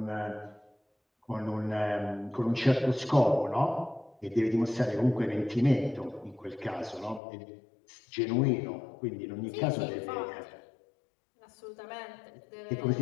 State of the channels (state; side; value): drops out; right; at 7.2 s